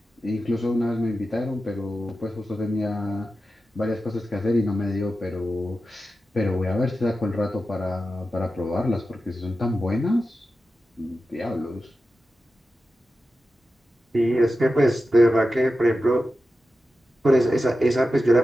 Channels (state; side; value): normal; both; correlation 0.92